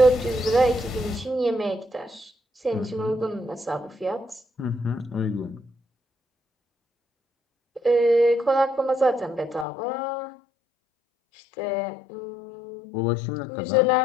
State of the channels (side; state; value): right; drops out; at 9.7 s